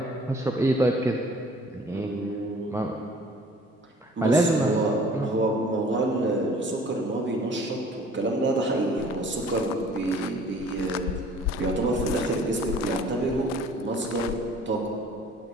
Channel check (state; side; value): normal; both; correlation 0.52